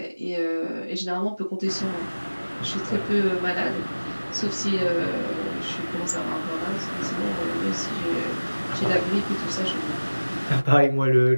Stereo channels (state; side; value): inverted; both; correlation -1.00